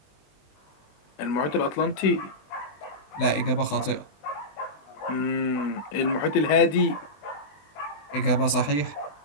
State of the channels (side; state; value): right; late; 20 ms